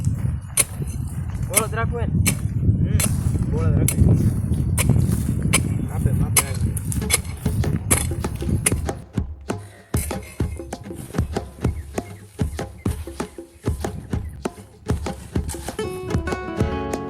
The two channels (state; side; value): identical; both; correlation 1.00